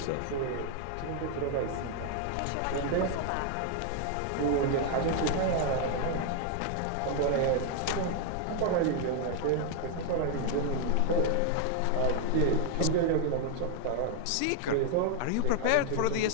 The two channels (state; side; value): different; both; correlation 0.00